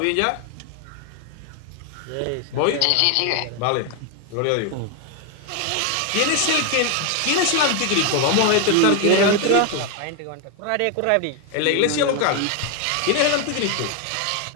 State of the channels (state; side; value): different; both; correlation 0.01